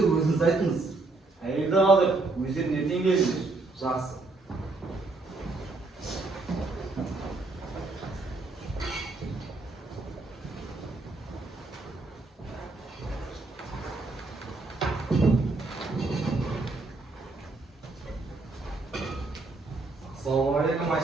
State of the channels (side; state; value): left; quieter; 3.4 dB